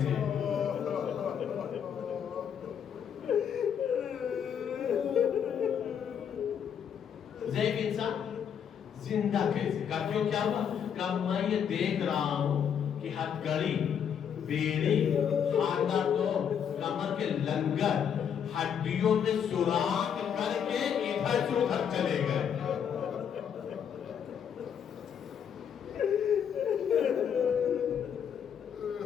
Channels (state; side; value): quieter; right; 8.1 dB